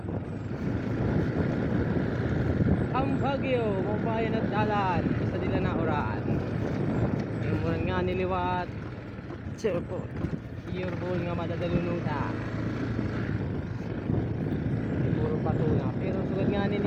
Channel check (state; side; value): identical; both; correlation 1.00